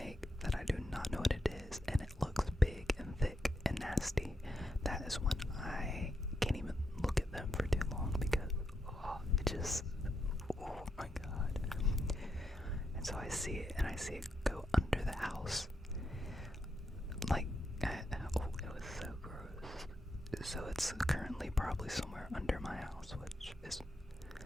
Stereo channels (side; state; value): both; normal; correlation 0.83